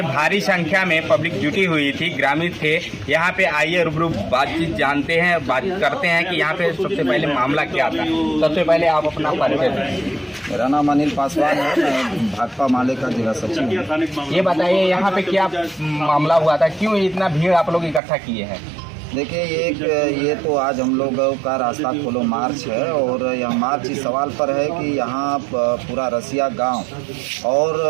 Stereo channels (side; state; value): left; drops out; at 18.0 s